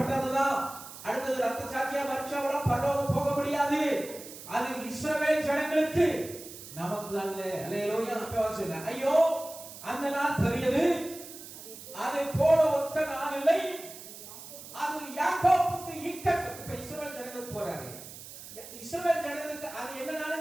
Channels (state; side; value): noise; right; hiss, 14 dB below the sound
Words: அடுத்தது ரத்த சாட்சியா மறிச்சவங்களும் பரலோகம் போக முடியாது. அது இஸ்ரவேல் ஜனங்களுக்கு, நமக்கு அல்ல. அல்லேலூயா. அப்ப ஐயோ, அந்த நாள் பெரியது, அதை போல ஒத்த நாள் இல்லை. அது யாக்கோபுக்கு இக்கட்டு. இப்ப இஸ்ரவேல் ஜனங்களுக்கு போறாரு, இஸ்ரவேல் ஜனங்களுக்கு அது என்ன